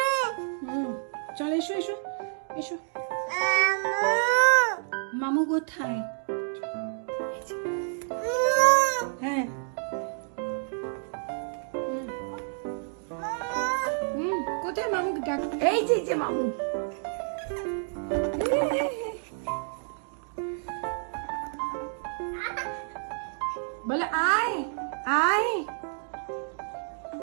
চল এসো এসো এসো মামু কোথায় হ্যাঁ কোথায় মামুকে ডাক এই যে মামু বলে আয় আয়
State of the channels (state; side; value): silent; left; 57 dB below the other